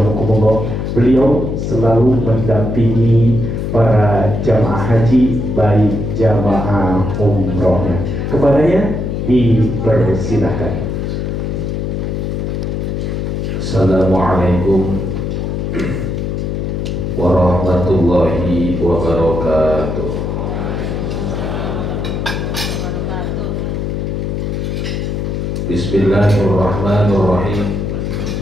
beliau selalu mendampingi para jamaah haji baik jamaah umrohnya. Kepadanya dipersilahkan. Assalamualaikum warahmatullahi wabarakatuh. Bismillahirrahmanirrahim.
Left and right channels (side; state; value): left; noise; hum, 2 dB below the sound